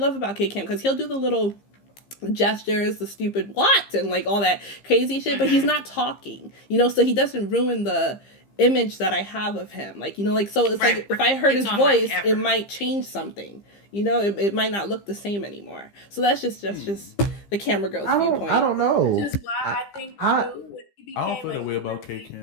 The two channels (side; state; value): right; late; 15 ms